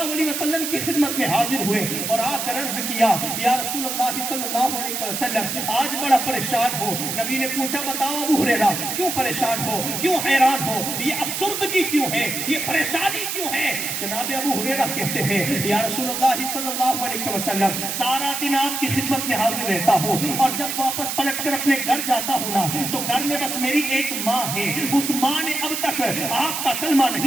علیہ وسلم کی خدمت میں حاضر ہوئے اور آ کر عرض کیا, یا رسول اللہ صلی اللہ علیہ وسلم, آج بڑا پریشان ہو. نبی نے پوچھا, بتاؤ ابو ہریرہ, کیوں پریشان ہو, کیوں حیران ہو, یہ افسردگی کیوں ہے, یہ پریشانی کیوں ہے؟ جناب ابو ہریرہ کہتے ہیں, یا رسول اللہ صلی اللہ علیہ وسلم, سارا دن آپ کی خدمت میں حاضر رہتا ہوں اور جب واپس پلٹ کر اپنے گھر جاتا ہوں نا تو گھر میں بس میری ایک ماں ہے. اس ماں نے اب تک آپ کا کلمہ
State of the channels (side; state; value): right; noise; hiss, 3 dB below the sound